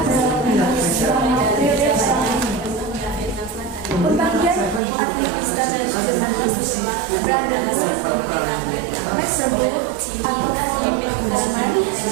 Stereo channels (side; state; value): left; drops out; at 4.8 s